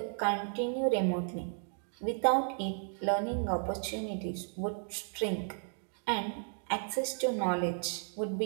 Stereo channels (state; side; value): silent; left; 55 dB below the other